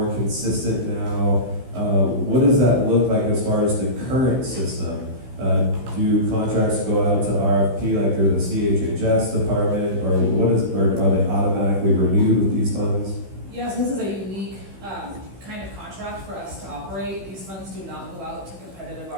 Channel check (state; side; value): late; left; 16 ms